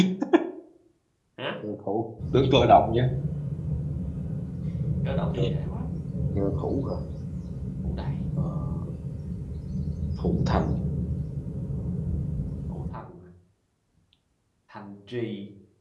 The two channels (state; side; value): identical; both; correlation 1.00